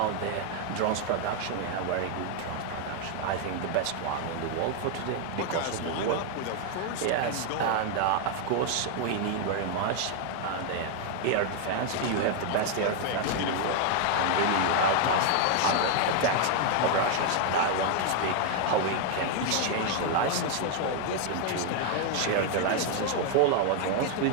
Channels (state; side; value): different; both; correlation 0.00